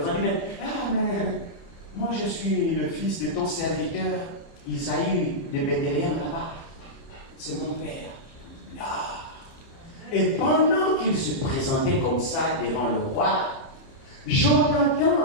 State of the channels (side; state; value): right; late; 30 ms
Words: Mais moi je suis le fils de ton serviteur Isaïe de Bethléem là-bas. C'est mon père. Ah. Et pendant qu'il se présentait comme ça devant le roi,